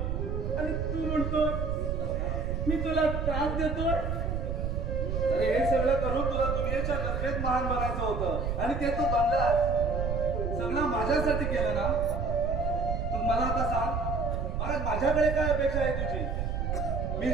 आणि तू म्हणतो मी तुला त्रास देतोय. अरे हे सगळं करून तुला दुनियेच्या नजरेत महान बनायचं होतं आणि ते तू बनलास. सगळं माझ्यासाठी केलं ना. तू मला आता सांग, माझ्याकडे काय अपेक्षा आहे तुझी? मी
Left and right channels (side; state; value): right; noise; rumble, 1 dB below the sound